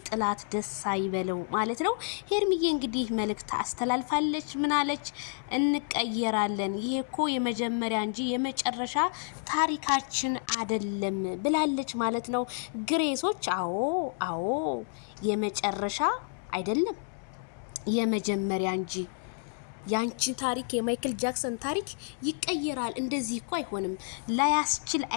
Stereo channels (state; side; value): silent; right; 58 dB below the other